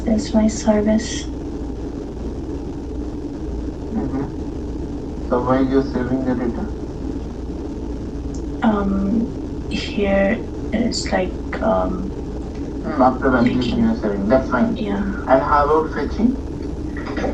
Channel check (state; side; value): identical; both; correlation 1.00